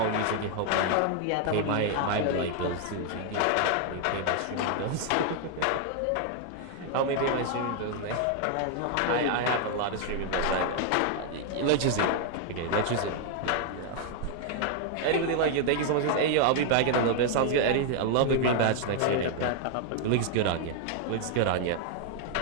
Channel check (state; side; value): different; both; correlation 0.00